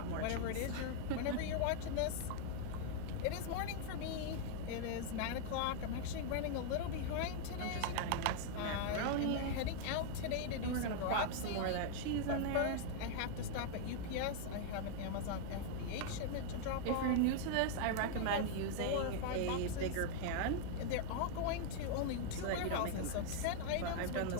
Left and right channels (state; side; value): different; both; correlation 0.00